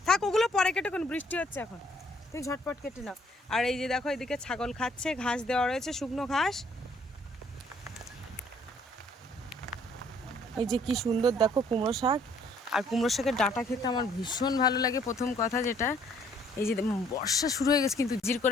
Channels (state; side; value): normal; both; correlation 0.62